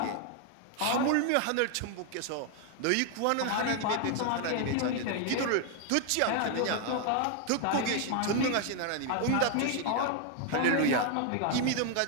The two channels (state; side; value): different; both; correlation 0.00